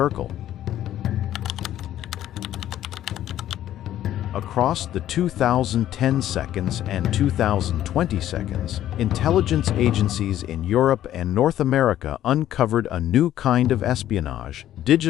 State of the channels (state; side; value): quieter; right; 12.3 dB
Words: Across the 2010 seconds and 2020 seconds, intelligence agencies in Europe and North America uncovered a new kind of espionage,